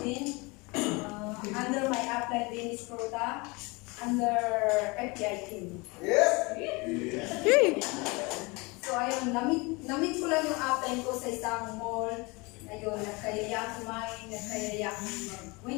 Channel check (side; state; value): right; quieter; 26.5 dB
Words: under my upline Dennis Prota under FPI team. Yes. So ayun, namit ko lang yung upline ko sa isang mall. Ayun, nagkayaya kumain, nagkayaya